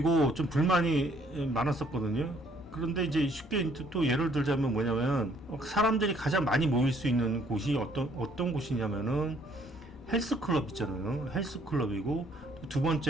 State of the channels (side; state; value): both; normal; correlation 0.64